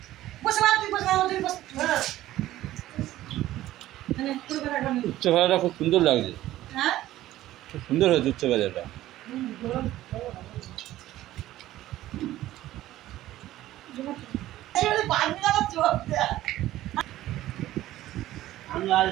উচ্চ ভাজাটা খুব সুন্দর লাগছে, খুব সুন্দর হয়েছে উচ্চ ভাজাটা।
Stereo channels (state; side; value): quieter; left; 14.8 dB